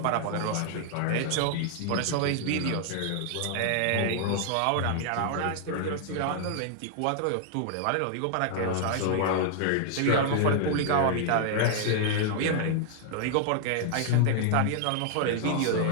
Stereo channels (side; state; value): both; different; correlation -0.01